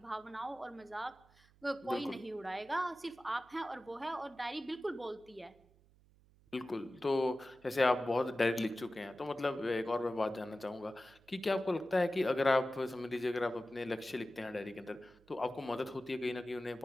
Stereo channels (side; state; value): right; noise; hum, 29 dB below the sound